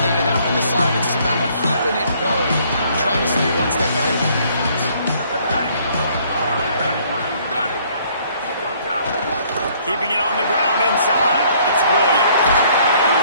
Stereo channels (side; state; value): both; inverted; correlation -0.62